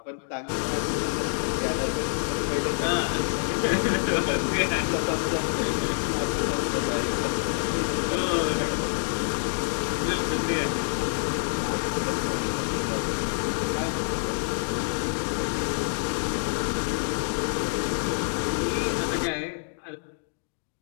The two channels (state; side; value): silent; right; digital silence